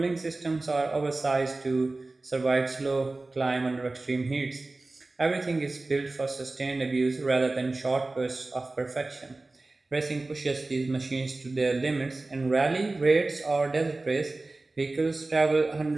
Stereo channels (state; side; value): quieter; left; 3.2 dB